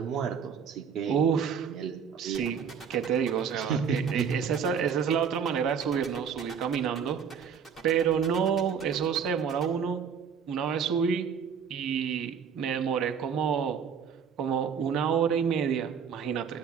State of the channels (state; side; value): quieter; left; 7.1 dB